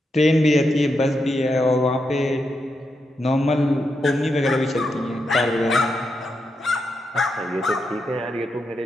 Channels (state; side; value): normal; both; correlation 0.85